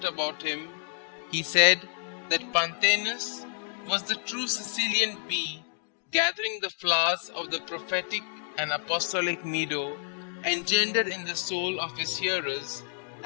about him, he said that Pantaenus was the true Sicilian bee, gathering the flowers of the prophetic and apostolic meadow, engendered in the soul of his hearers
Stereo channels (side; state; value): right; silent; digital silence